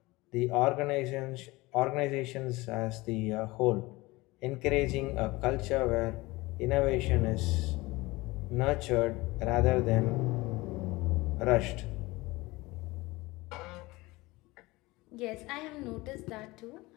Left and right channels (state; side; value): quieter; right; 21.4 dB